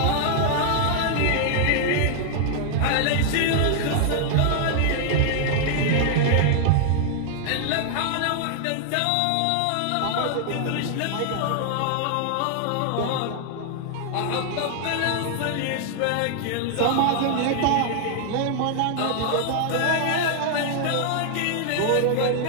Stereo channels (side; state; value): both; different; correlation 0.00